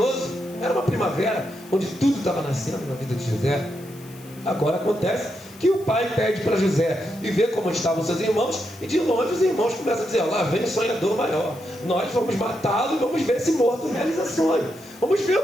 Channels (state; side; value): noise; left; hiss, 22 dB below the sound